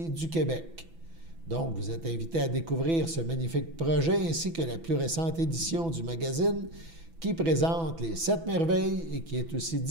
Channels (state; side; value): late; left; 6.0 ms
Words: du Québec. Donc, vous êtes invités à découvrir ce magnifique projet ainsi que la plus récente édition du magazine qui présente les 7 merveilles et qui est aussi